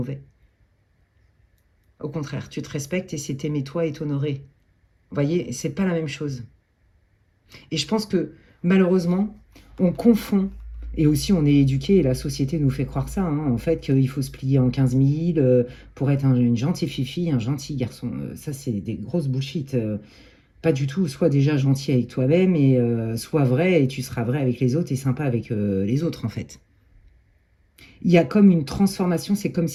Au contraire, tu te respectes et c'est t'aimer toi et t'honorer. Vous voyez, c'est pas la même chose. Et je pense que malheureusement, on confond, et aussi on est éduqué, et la société nous fait croire ça, hein, en fait, qu'il faut se plier en 15 000 pour être une gentille fille, un gentil garçon. Ça, c'est des grosses bullshit. Pas du tout. Sois déjà gentil avec toi-même et sois vrai, et tu seras vrai avec les autres et sympa avec les autres, en fait. Il y a comme une transformation, c'est comme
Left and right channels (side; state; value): both; identical; correlation 1.00